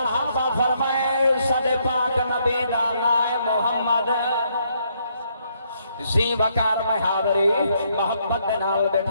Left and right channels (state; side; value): inverted; both; correlation -0.73